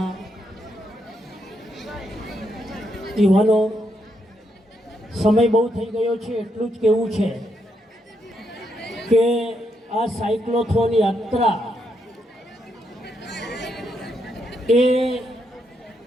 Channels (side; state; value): both; normal; correlation 0.79